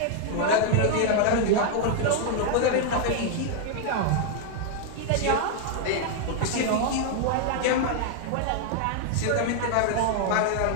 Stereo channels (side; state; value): both; different; correlation 0.00